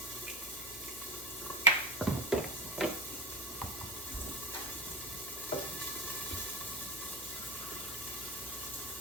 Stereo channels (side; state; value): both; normal; correlation 0.23